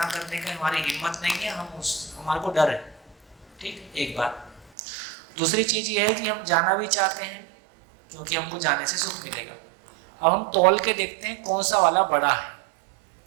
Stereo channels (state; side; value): drops out; left; at 4.7 s